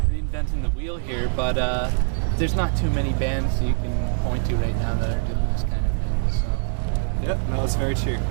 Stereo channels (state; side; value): silent; left; 60 dB below the other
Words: reinventing the wheel here, but there's not too many bands you can point to right now that are doing this kind of thing. So. Yeah, no, that's very true.